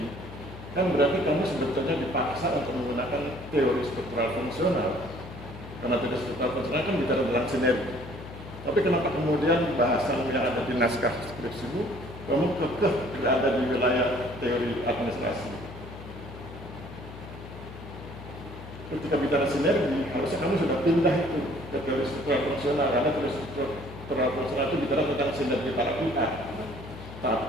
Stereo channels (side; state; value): left; noise; hum, 13 dB below the sound